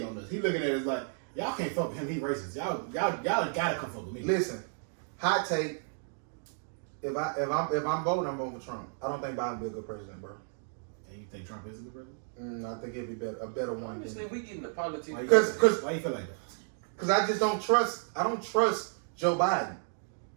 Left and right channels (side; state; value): left; silent; 56 dB below the other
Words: on us. He looking at it as like y'all can't fuck with him. He racist. Y'all gotta come fuck with me. Listen, hot take. If I'm voting, I'm voting for Trump. I don't think Biden will be a good president, bro. And you think Trump is a good president? I think he'll be a better one. Honestly, we get into politics Because why you feel like that? Because I just don't trust. I don't trust Joe Biden.